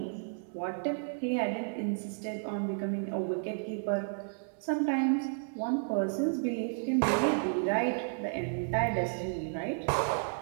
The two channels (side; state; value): left; silent; digital silence